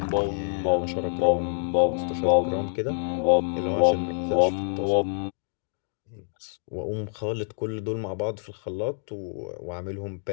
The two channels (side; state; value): right; silent; 60 dB below the other